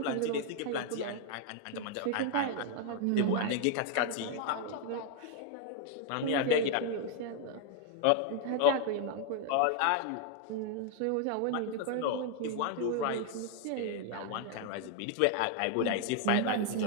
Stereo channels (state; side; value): different; both; correlation 0.00